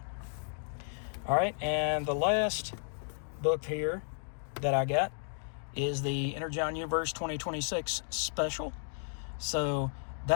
All right, and the last book here that I got is the Energon Universe 2026 special. So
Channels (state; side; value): silent; right; digital silence